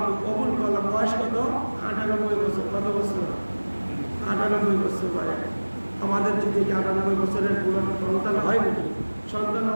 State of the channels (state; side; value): inverted; both; correlation -1.00